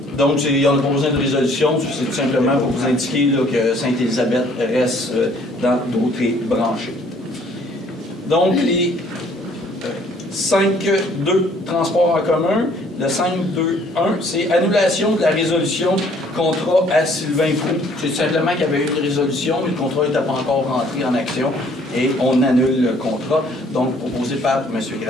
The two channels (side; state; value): both; normal; correlation 0.60